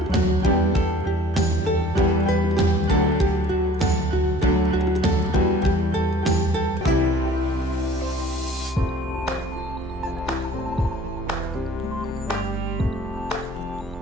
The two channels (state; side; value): normal; both; correlation 0.51